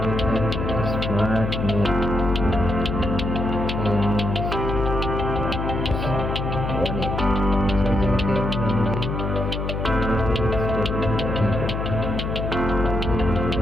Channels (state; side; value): noise; left; hum, 2 dB below the sound